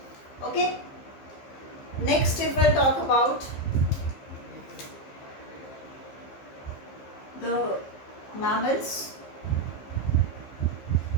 Okay. Next, if we'll talk about the mammals,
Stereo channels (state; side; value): late; right; 15 ms